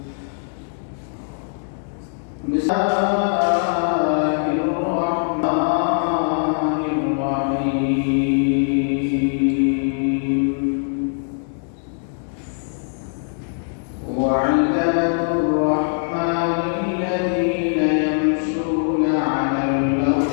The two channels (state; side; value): silent; right; digital silence